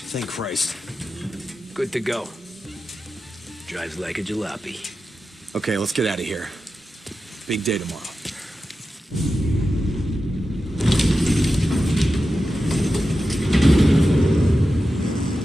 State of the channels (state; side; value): normal; both; correlation 0.92